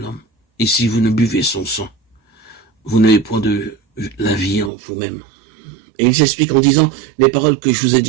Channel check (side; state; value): left; drops out; at 4.7 s